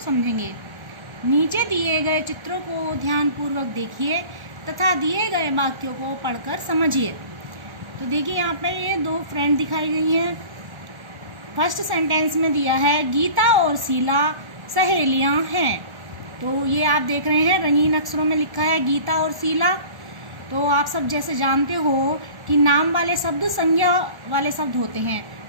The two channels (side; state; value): left; late; 1.4 ms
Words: समझेंगे. नीचे दिए गए चित्रों को ध्यानपूर्वक देखिए तथा दिए गए वाक्यों को पढ़कर समझिए. तो देखिए यहाँ पे ये दो फ्रेंड दिखाई गई हैं. फर्स्ट सेंटेंस में दिया है गीता और शीला सहेलियाँ हैं. तो ये आप देख रहे हैं रंगीन अक्षरों में लिखा है गीता और शीला. तो आप सब जैसे जानते हो कि नाम वाले शब्द संज्ञा वाले शब्द होते हैं,